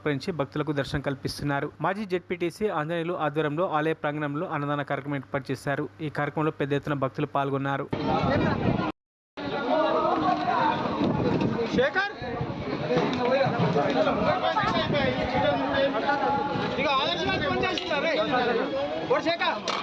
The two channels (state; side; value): identical; both; correlation 1.00